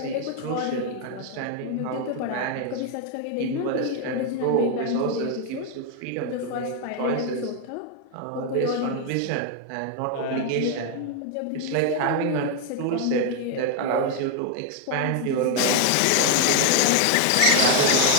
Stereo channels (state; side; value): different; both; correlation 0.01